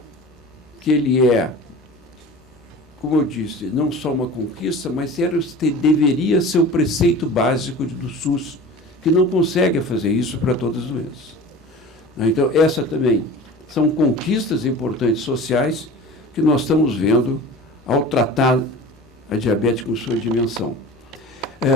que ele é como eu disse, não só uma conquista, mas deveria ser o preceito básico do SUS, que não consegue fazer isso para todas as doenças. Então, essa também são conquistas importantes sociais que nós estamos vendo ao tratar a diabetes com sua dimensão.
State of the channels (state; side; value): normal; both; correlation 0.38